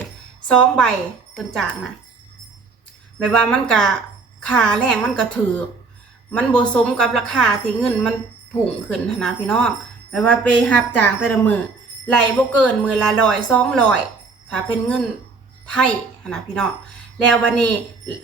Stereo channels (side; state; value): left; quieter; 4.2 dB